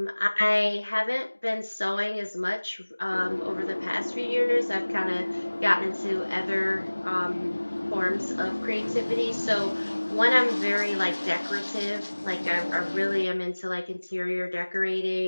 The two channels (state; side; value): inverted; both; correlation -1.00